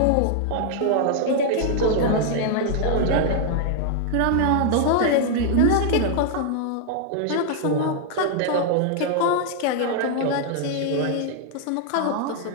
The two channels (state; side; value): different; both; correlation 0.00